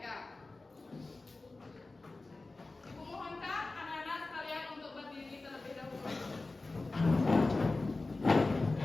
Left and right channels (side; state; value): right; quieter; 3.3 dB